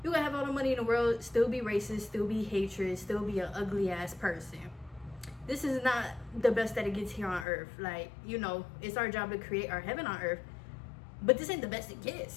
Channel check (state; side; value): drops out; right; at 7.5 s